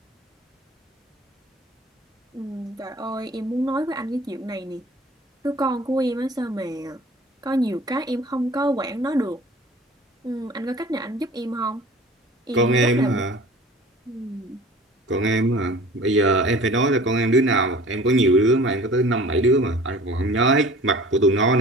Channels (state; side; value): normal; both; correlation 0.45